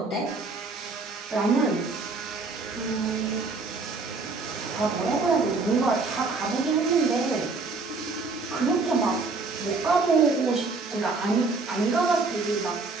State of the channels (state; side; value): quieter; left; 3.9 dB